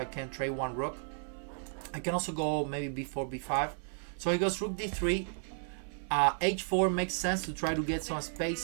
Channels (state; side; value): silent; left; 55 dB below the other